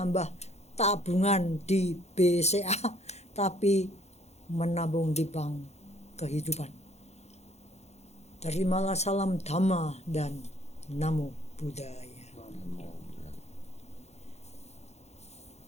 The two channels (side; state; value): right; late; 0.31 ms